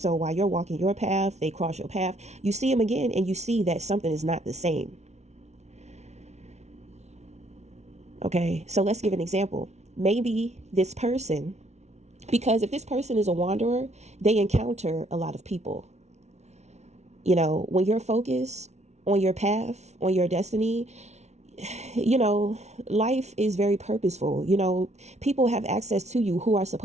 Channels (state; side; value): late; left; 0.32 ms